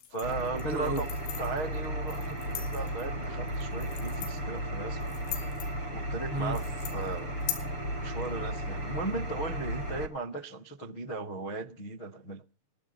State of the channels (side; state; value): right; late; 7.3 ms